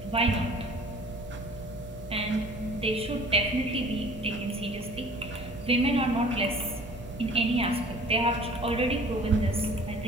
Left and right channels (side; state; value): both; normal; correlation 0.48